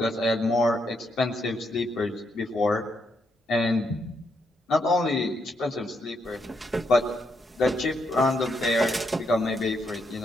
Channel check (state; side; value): normal; both; correlation 0.78